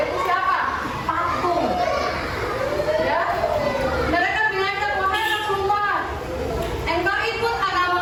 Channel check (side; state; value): both; identical; correlation 1.00